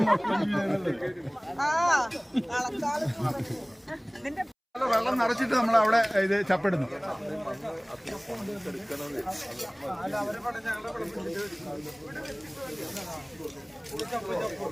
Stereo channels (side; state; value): both; identical; correlation 1.00